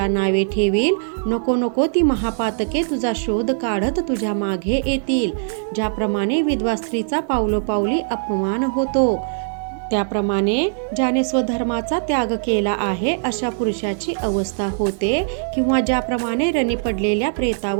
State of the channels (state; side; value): silent; left; digital silence